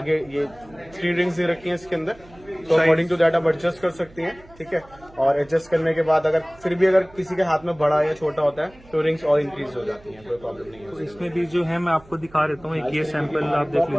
ये 3 रिंग्स दे रखी हैं इसके अंदर, तो अकॉर्डिंग टू दैट आप एडजस्ट कर सकती हैं। ठीक है, और एडजस्ट करने के बाद अगर फिर भी अगर किसी के हाथ में बड़ा या छोटा होता है तो रिंग्स और इंक्रीज हो जाती हैं, कोई प्रॉब्लम नहीं तो है। इसमें भी जो है मैं आपको दिखा देता हूँ, एक ये सैंपल आप देख लीजिए,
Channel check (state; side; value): noise; right; hum, 24 dB below the sound